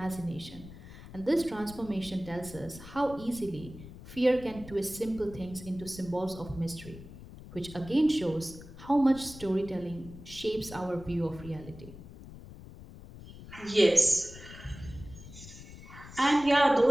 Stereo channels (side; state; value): left; noise; rumble, 16 dB below the sound